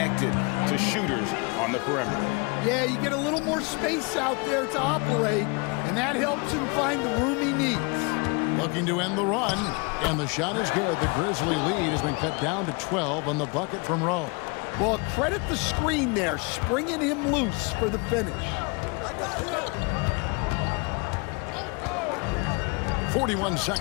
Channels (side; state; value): right; quieter; 31.1 dB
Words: to shooters on the perimeter. Yeah, you get a little more space out there to operate, and that helps him find the room he needs. Looking to end the run, and the shot is good. The Grizzly lead has been cut down to 12 on the bucket from Rowe. Well, credit the screen there, springing him loose for the finish. 41